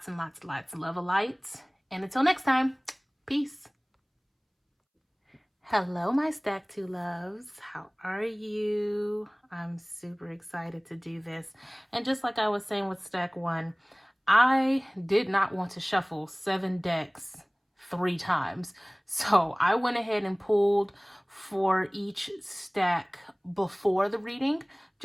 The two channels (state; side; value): identical; both; correlation 1.00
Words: and lots and lots of love and light. And until next time, peace. Hello, my Stack 2 loves. How are you? I'm super excited to do this. And just like I was saying with Stack 1, I did not want to shuffle 7 decks 3 times. So I went ahead and pulled for each stack before the reading,